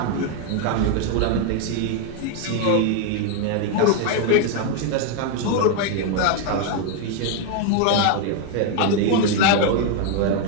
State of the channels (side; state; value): both; different; correlation 0.01